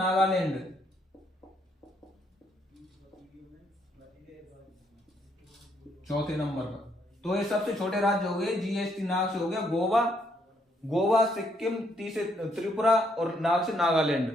चौथे नंबर पर तो ये सबसे छोटे राज्य हो गए। जीएसटी नाग से हो गया गोवा, सिक्किम, टी से त्रिपुरा और नाग से नागालैंड।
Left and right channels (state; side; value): normal; both; correlation 0.72